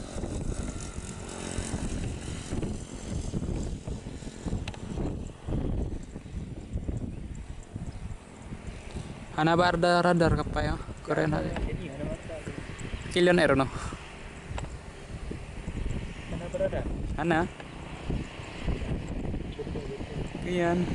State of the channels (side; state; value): both; identical; correlation 1.00